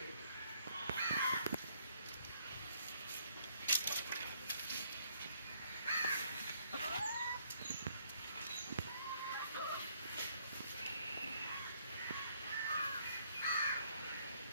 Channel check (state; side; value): inverted; both; correlation -0.68